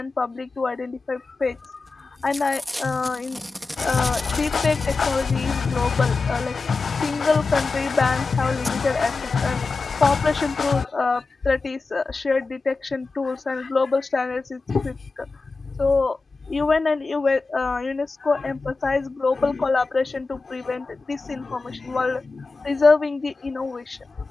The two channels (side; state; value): right; quieter; 3.9 dB